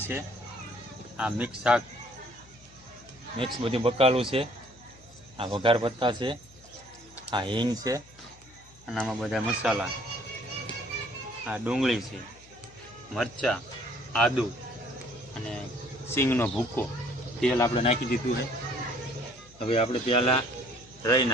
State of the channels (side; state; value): left; noise; hum, 25 dB below the sound